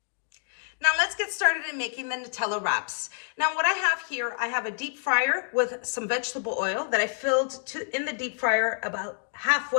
Now let's get started in making the Nutella wraps. Now what I have here, I have a deep fryer with some vegetable oil that I filled in the deep fryer about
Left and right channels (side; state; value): right; silent; digital silence